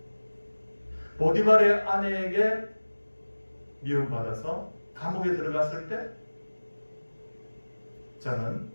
보디발의 아내에게 미움받아서 감옥에 들어갔을 때, 저는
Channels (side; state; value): both; inverted; correlation -1.00